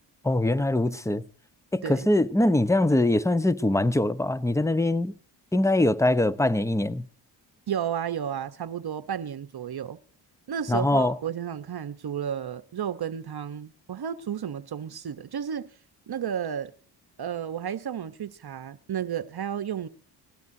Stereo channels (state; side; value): normal; both; correlation 0.70